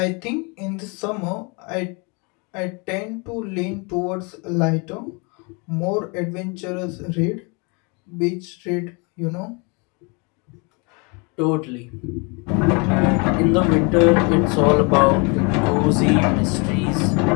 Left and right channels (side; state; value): right; quieter; 31.3 dB